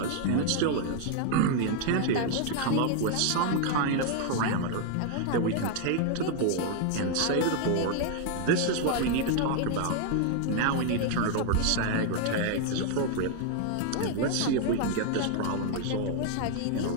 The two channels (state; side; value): different; both; correlation 0.00